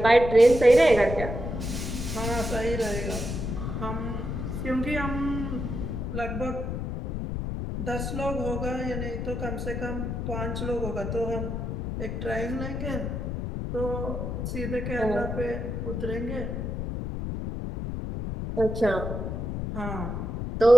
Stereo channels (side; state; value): left; noise; rumble, 3 dB below the sound